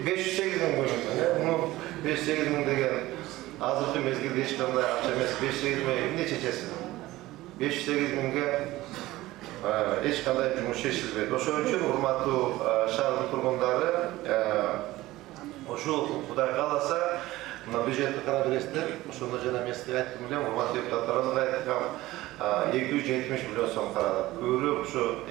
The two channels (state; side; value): quieter; left; 17.5 dB